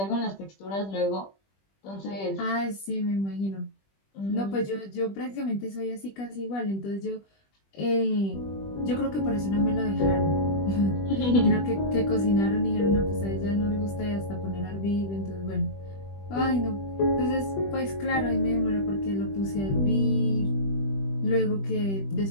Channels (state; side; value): late; right; 20 ms